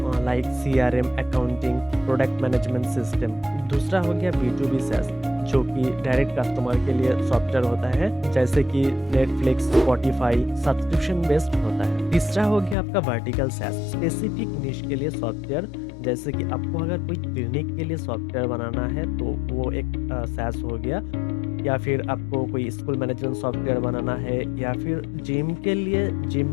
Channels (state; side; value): drops out; right; at 12.8 s